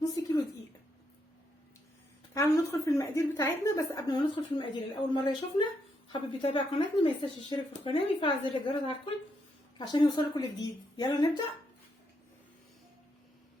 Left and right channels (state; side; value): normal; both; correlation 0.79